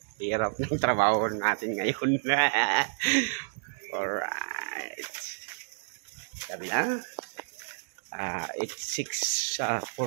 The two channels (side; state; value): left; silent; digital silence